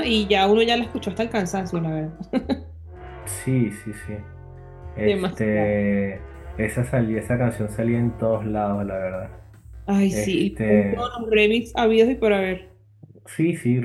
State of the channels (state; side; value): identical; both; correlation 1.00